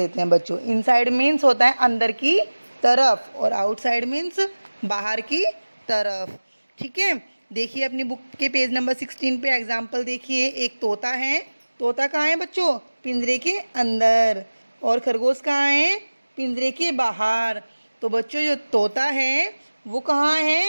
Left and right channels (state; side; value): inverted; both; correlation -1.00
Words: हैं बच्चों। इनसाइड मीन्स होता है अंदर की तरफ और आउटसाइड मीन्स बाहर की तरफ। ठीक है, देखिए अपनी बुक के पेज नंबर 16 पे एग्जाम्पल देखिए। एक तोता है। तोता कहाँ है बच्चों? पिंजरे के अंदर। और खरगोश कहाँ है? पिंजरे के बाहर। तो बच्चों, जो तोता है वो कहाँ